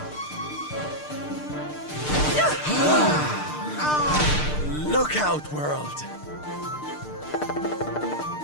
Look out, world!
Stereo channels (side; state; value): right; late; 6.6 ms